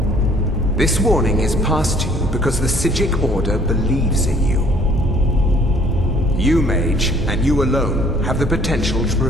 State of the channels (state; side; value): normal; both; correlation 0.58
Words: This warning is passed to you because the Psijic Order believes in you. You, mage, and you alone, have the potential to